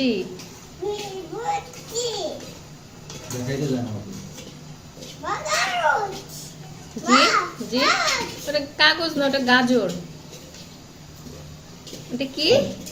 জি জি, ওটা কাগজ না, ওটা গাজর। এটা কি?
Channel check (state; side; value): identical; both; correlation 1.00